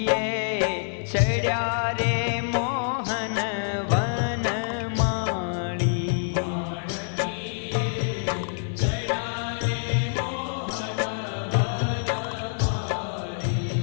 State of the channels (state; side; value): silent; right; 61 dB below the other